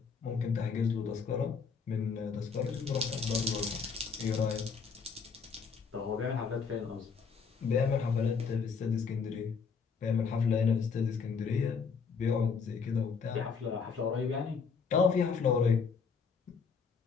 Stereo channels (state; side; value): quieter; right; 5.6 dB